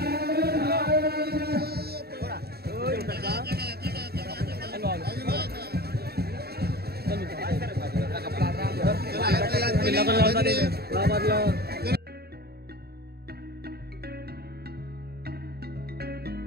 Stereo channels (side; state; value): left; late; 0.46 ms